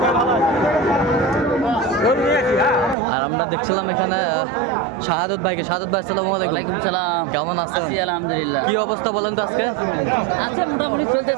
আর আমরা দেখছিলাম এখানে শাহাদত ভাইকে। শাহাদত ভাই আসসালামু আলাইকুম। ওয়ালাইকুম সালাম। কেমন আছেন? আছি আলহামদুলিল্লাহ। কি অবস্থা বলেন তো আজকে? আছে মোটামুটি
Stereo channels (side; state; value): left; drops out; at 3.0 s